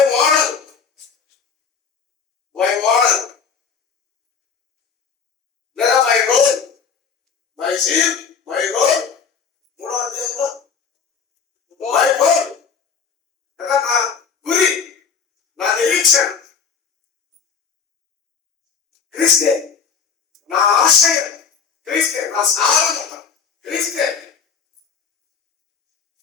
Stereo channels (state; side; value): quieter; right; 6.2 dB